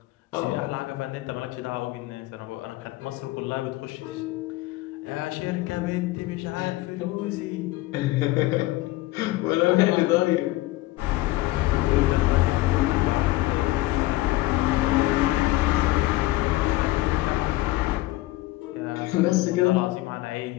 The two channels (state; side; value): quieter; right; 18.6 dB